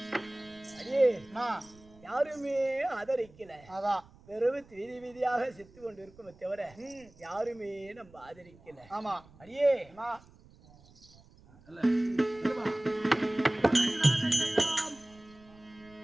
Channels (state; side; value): noise; right; rumble, 25 dB below the sound